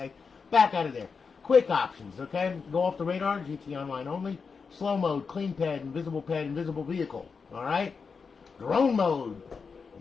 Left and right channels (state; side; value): quieter; right; 5.3 dB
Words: Back out of there. Quick options, okay? Go off the radar, GTA Online only. Slow mode, clean pad, invisible vehicle. Alright? Drone mode.